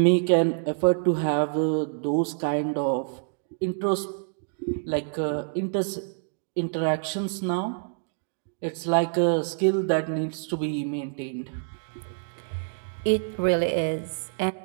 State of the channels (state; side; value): silent; left; digital silence